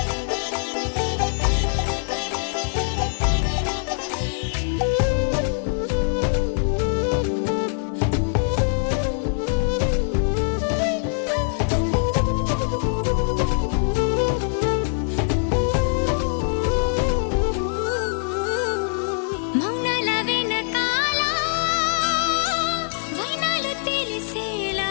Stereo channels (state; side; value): silent; right; 63 dB below the other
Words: మౌనాల వెనకాల వైనాలు తెలిసే